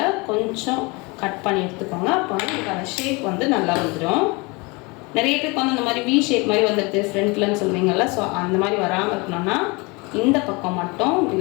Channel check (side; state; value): right; quieter; 27.0 dB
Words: கொஞ்சம் கட் பண்ணி எடுத்துக்கோங்க. அப்போ வந்து உங்களுக்கு அந்த ஷேப் வந்து நல்லா வந்துடும். நிறைய பேருக்கு வந்து அந்த மாதிரி வி ஷேப் மாதிரி வந்துடுது ஃப்ரண்ட்லன்னு சொல்லுவீங்கள்ல, ஸோ அந்த மாதிரி வராமல் இருக்கணும்னா இந்த பக்கம் மட்டும்